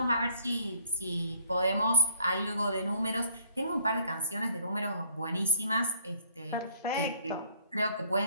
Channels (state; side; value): inverted; both; correlation -0.58